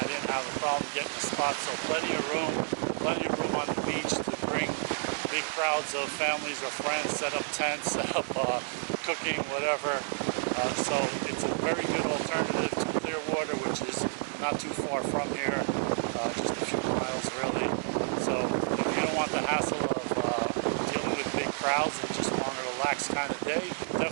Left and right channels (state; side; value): silent; left; digital silence